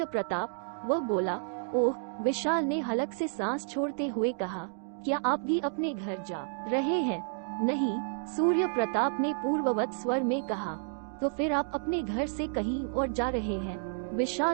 प्रताप। वह बोला। ओह। विशाल ने हलक से सांस छोड़ते हुए कहा, क्या आप भी अपने घर जा रहे हैं? नहीं, सूर्य प्रताप ने पूर्ववत स्वर में कहा। तो फिर आप अपने घर से कहीं और जा रहे हैं?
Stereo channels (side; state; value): left; silent; digital silence